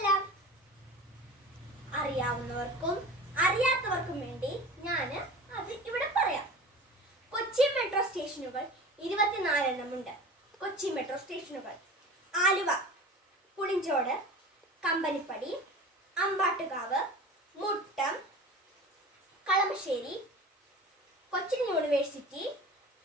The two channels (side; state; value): both; normal; correlation 0.36